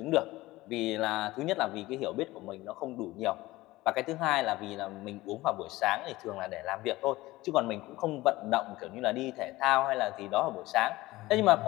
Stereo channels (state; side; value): quieter; right; 18.6 dB